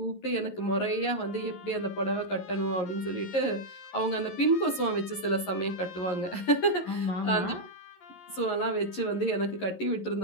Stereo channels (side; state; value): right; late; 11 ms